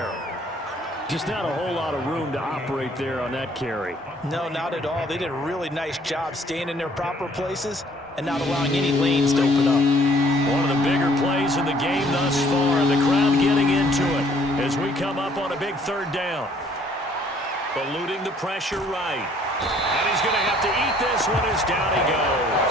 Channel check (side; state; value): both; normal; correlation 0.60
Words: Just not a whole lot of room to operate there on that carry. No, not at all. They did a really nice job staying in their proper places and not allowing any lanes to open up. One of the bigger plays in the game thus far. The crowd getting into it as we come up on a big third down. Eluding the pressure right. And he's going to have to eat this one as down he